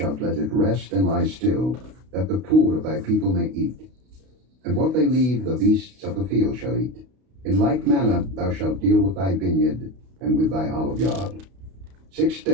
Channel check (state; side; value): late; left; 32 ms